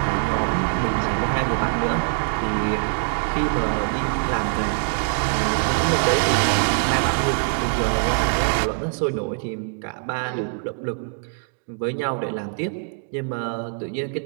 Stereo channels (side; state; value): left; silent; 63 dB below the other